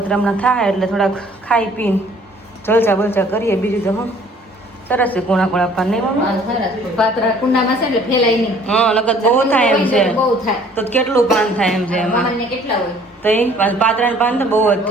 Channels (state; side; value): normal; both; correlation 0.56